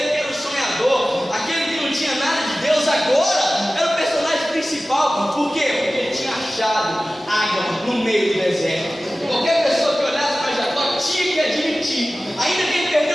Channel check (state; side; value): normal; both; correlation 0.96